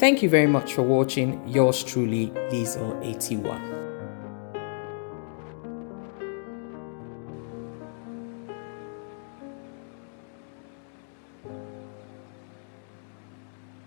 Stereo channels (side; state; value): right; silent; 58 dB below the other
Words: you very much for watching. Yours truly, Liesel81.